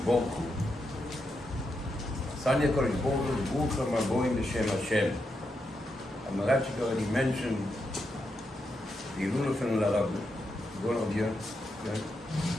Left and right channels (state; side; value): normal; both; correlation 0.84